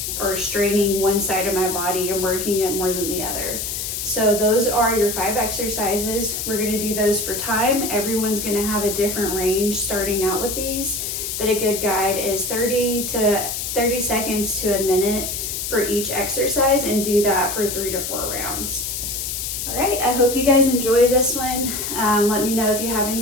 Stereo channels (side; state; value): left; noise; hiss, 4 dB below the sound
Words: or straining one side of my body and working it more than the other. So those are your 5 exercises. We're gonna do those for time. Everyone's gonna have a different range starting out with these, but a good guide is 30 seconds to a minute for each exercise, and do that for 3 to 4 rounds. All right, I hope you guys enjoy this one. Let me know if you have